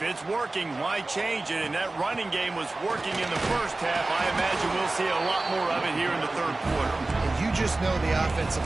it's working, why change it? And that running game was working in the first half. I imagine we'll see a lot more of it here in the third quarter. And you just know the offensive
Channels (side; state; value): left; quieter; 3.1 dB